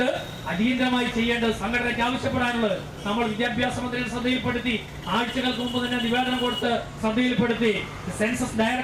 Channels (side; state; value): both; identical; correlation 1.00